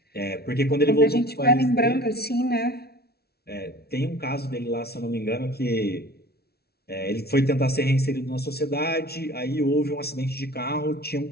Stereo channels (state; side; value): late; right; 0.46 ms